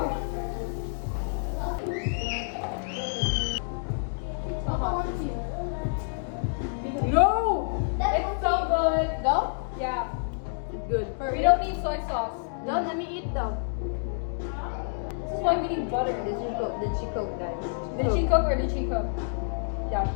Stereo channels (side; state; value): right; silent; digital silence